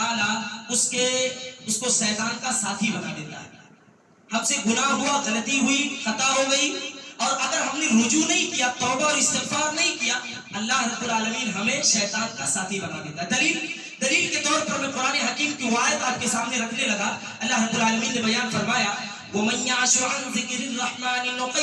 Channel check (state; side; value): identical; both; correlation 1.00